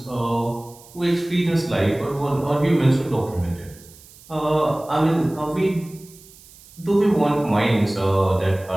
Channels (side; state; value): right; noise; hiss, 23 dB below the sound